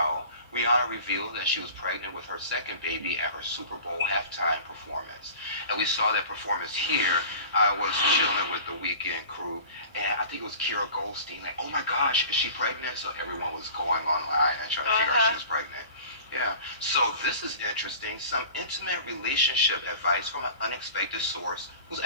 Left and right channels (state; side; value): inverted; both; correlation -0.41